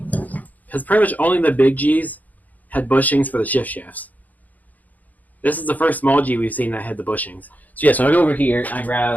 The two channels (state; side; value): late; right; 0.079 ms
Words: Because pretty much only the big G's had bushings for the shift shafts. This is the first small G we've seen that had the bushings. So yeah, so I go over here and I